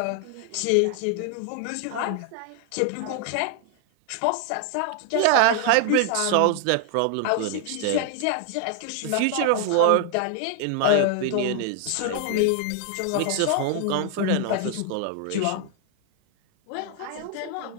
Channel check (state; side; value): different; both; correlation 0.00